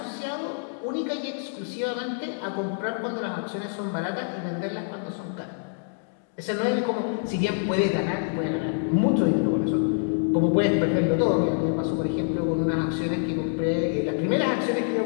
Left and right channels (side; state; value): right; silent; digital silence